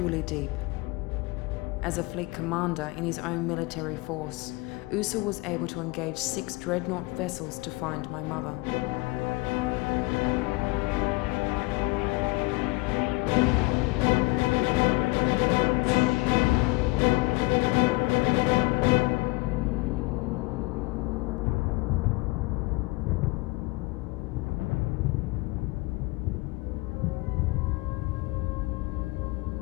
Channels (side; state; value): right; quieter; 23.6 dB